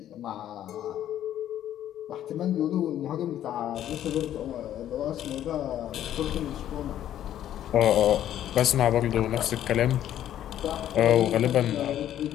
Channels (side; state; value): right; quieter; 11.5 dB